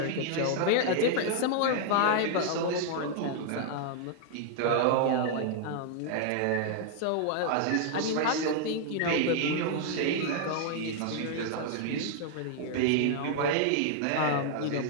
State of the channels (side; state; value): both; different; correlation 0.00